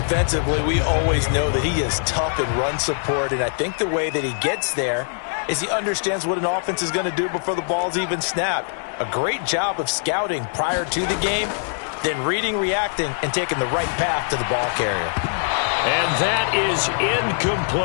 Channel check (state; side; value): silent; right; digital silence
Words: we always know that he is tough in run support, and I think the way that he gets there is he understands what an offense is going to do before the ball's even snapped. A great job of scouting prior to the game, then reading, reacting, and taking the right path to the ball carrier. And that is